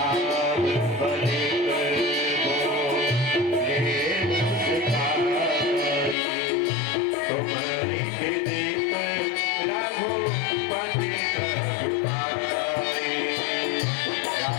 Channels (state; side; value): drops out; right; at 6.2 s